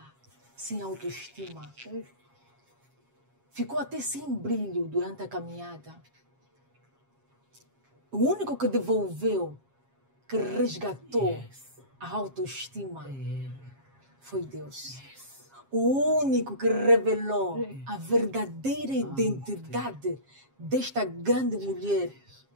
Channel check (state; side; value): late; left; 7.4 ms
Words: sem autoestima. Ficou até sem brilho durante a caminhada. O único que devolveu, que resgatou a autoestima foi Deus. O único que revelou a verdadeira identidade desta grande mulher